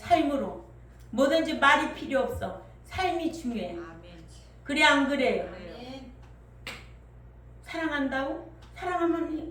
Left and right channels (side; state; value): both; identical; correlation 1.00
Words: 뭐든지 말이 필요 없어. 삶이 중요해. 그래 안 그래요? 사랑한다고?